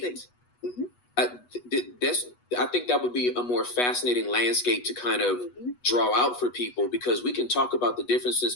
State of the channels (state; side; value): late; right; 8.2 ms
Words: I think that would be a more fascinating landscape to kind of draw out for people, because we can talk about the differences